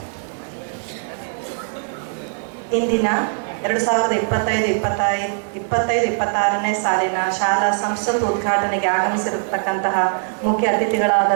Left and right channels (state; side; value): silent; left; digital silence